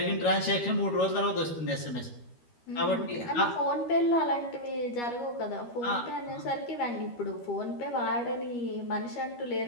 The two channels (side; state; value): right; late; 13 ms